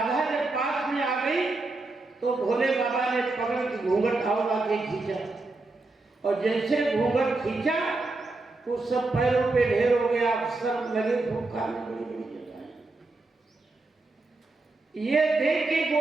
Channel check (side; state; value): left; quieter; 3.3 dB